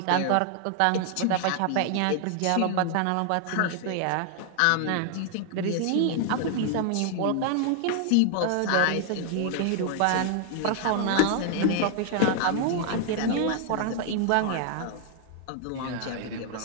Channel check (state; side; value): different; both; correlation 0.00